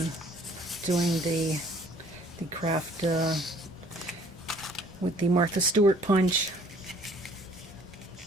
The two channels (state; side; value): normal; both; correlation 0.57